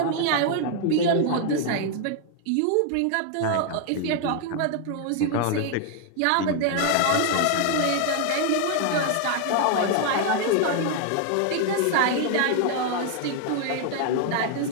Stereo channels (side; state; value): both; different; correlation 0.00